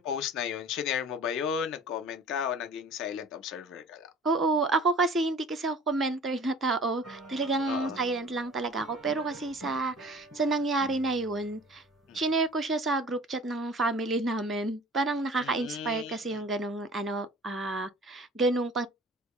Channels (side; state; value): both; normal; correlation 0.46